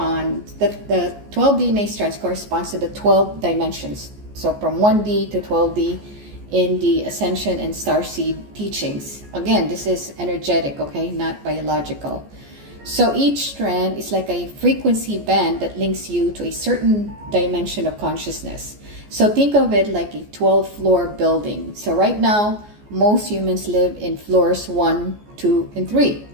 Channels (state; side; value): late; left; 14 ms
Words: the 12 DNA strands corresponds to the 12 dimensions. So from 1D to 12D in the Ascension and Starseed teachings. Again, this is energetic, okay, not biological. So each strand is like a frequency band that links you to a certain dimension of consciousness. So think of it like a 12-floor building. So right now, most humans live in floors 1, 2, and 3.